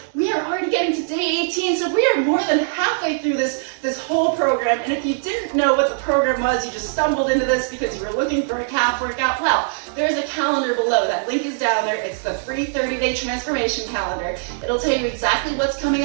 we are already getting to day 18. So we are more than halfway through this whole program. And if you didn't know what the program was, you just stumbled into this because you were looking for a calf workout, well, there's a calendar below. That link is down there. It's the free 30-day transformation calendar. It'll tell you exactly what's coming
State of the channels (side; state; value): left; silent; 65 dB below the other